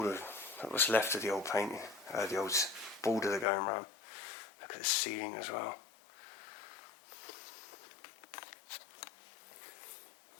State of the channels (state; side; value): drops out; right; at 3.5 s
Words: that was left of the old painting, the old border they're going around. Look at the ceiling as well.